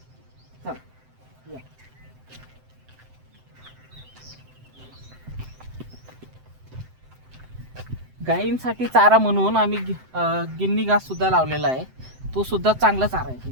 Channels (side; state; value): left; late; 7.8 ms